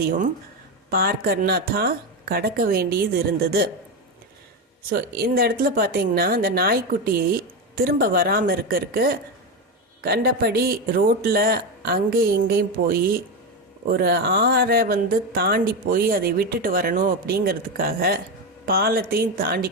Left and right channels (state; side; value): normal; both; correlation 0.13